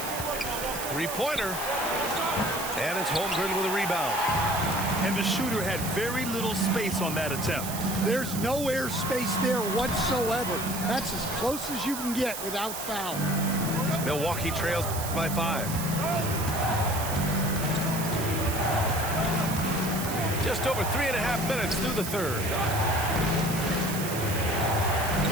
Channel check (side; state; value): right; noise; hiss, 7 dB below the sound